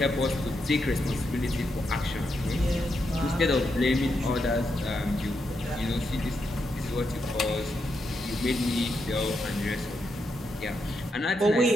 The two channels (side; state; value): both; normal; correlation 0.83